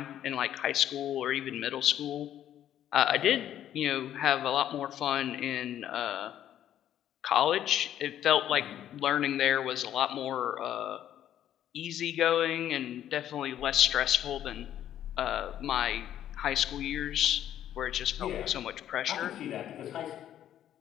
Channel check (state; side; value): quieter; right; 11.2 dB